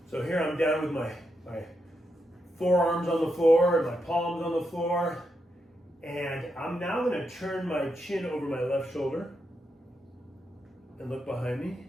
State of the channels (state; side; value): normal; both; correlation 0.83